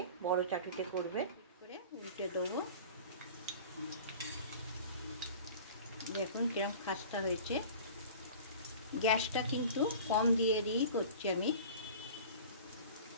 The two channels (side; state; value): both; inverted; correlation -0.40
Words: বড় চাটুতে করবে। করে উল্টে দেবো। দেখুন কিরম খাস্তা হয়েছে। গ্যাসটা কিন্তু কম দিয়ে দিয়েই করছি আমি।